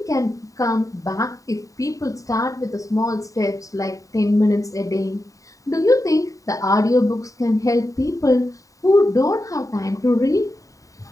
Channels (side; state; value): right; late; 0.16 ms